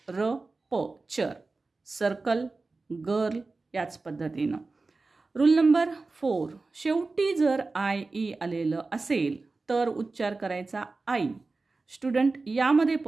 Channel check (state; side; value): quieter; left; 3.7 dB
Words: र प, चर्प. सर्कल, गर्ल याच पद्धतीनं. रूल नंबर 4, शेवटी जर IE आलेलं असेल तर उच्चार करायचा आई. स्टुडंट, यामध्ये